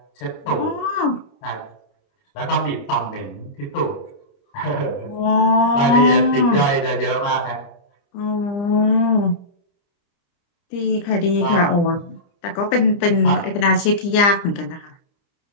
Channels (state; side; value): late; right; 29 ms